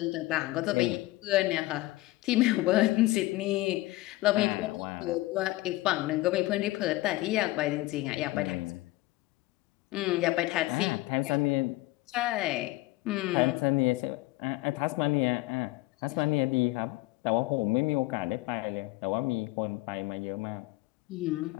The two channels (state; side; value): quieter; right; 19.3 dB